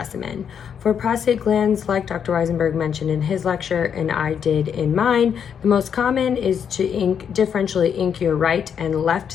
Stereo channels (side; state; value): right; quieter; 7.7 dB